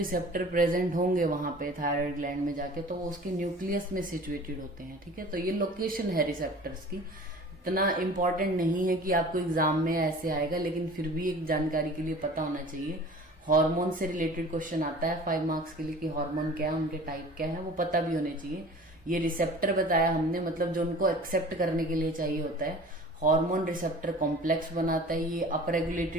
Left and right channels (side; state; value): both; normal; correlation 0.44